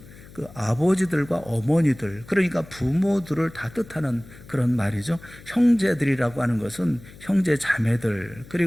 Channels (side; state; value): left; noise; hum, 20 dB below the sound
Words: 그 아버지들과 어머니들, 그러니까 부모들을 다 뜻하는 그런 말이죠. 형제들이라고 하는 것은 형제 자매들,